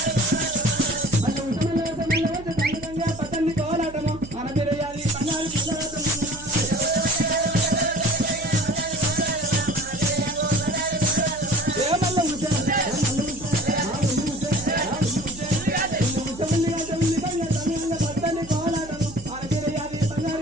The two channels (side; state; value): right; noise; hum, 17 dB below the sound